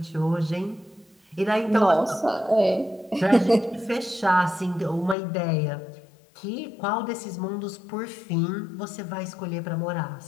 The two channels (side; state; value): right; drops out; at 5.2 s